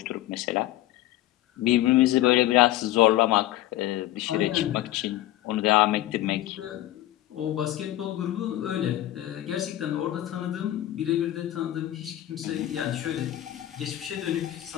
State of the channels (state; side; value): quieter; right; 14.5 dB